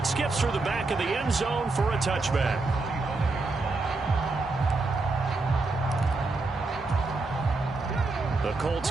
skips through the back of the end zone for a touchback. The Colts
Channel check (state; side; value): quieter; left; 3.4 dB